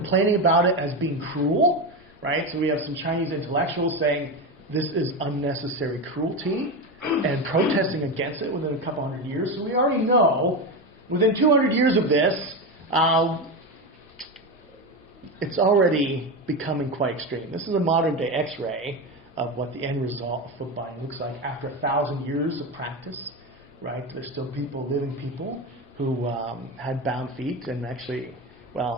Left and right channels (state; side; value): normal; both; correlation 0.17